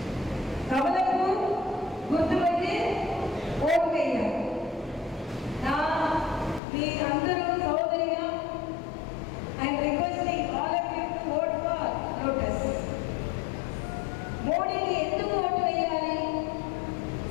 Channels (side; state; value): right; drops out; at 6.6 s